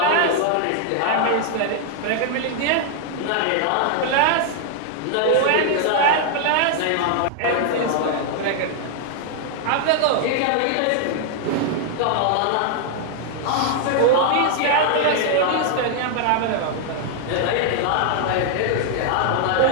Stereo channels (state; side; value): different; both; correlation 0.00